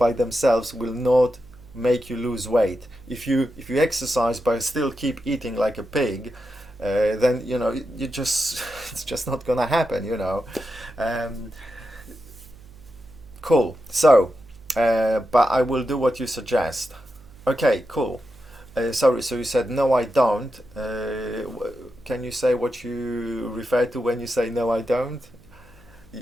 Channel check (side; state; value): right; noise; hum, 24 dB below the sound